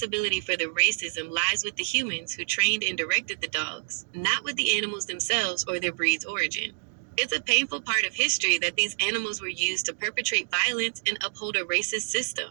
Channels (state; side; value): silent; left; digital silence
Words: for the racism lies with the humans who trained and directed the dogs, not with the animals themselves or their breed's origin. It's a painful part of history that these animals were used to perpetrate violence and uphold a racist system.